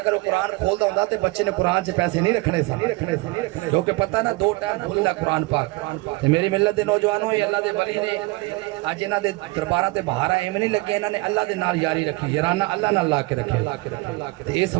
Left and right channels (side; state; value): left; quieter; 23.4 dB